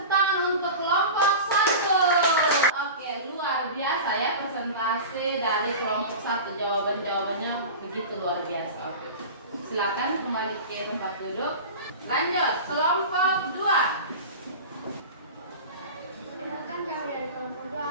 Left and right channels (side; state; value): both; inverted; correlation -0.31